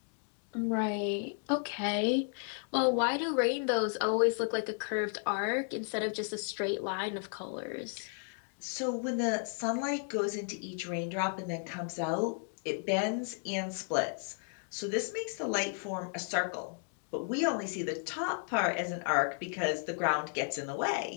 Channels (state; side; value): silent; right; 55 dB below the other